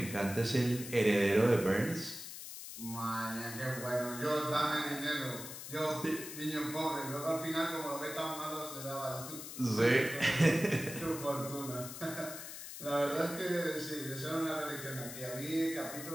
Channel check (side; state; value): left; noise; hiss, 10 dB below the sound